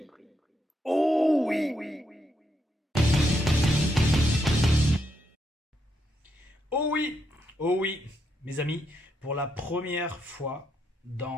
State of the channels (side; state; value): both; normal; correlation 0.80